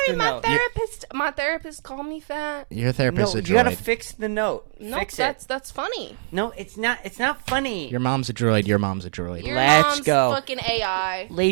the my note. therapist called me fat. Your therapist No, is a you gotta droid. fix the note. No, fix that's funny. it. No, it's not. It's not funny. Your mom's a droid. Your mom's a droid. Your Let's mom's go. fucking AI.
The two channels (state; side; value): silent; left; digital silence